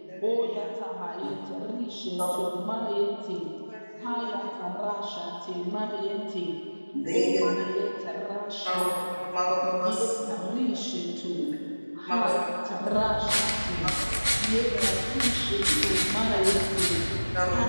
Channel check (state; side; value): inverted; both; correlation -1.00